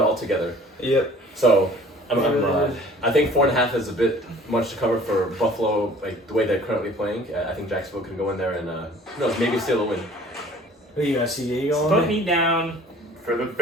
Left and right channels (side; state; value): both; normal; correlation 0.50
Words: all together. Yep. So I think 4.5 is a bit much to cover for Buffalo, like the way they're currently playing. I think Jacksonville can go in there and who knows, maybe steal a win. Who you got? CBA going? Put me down For the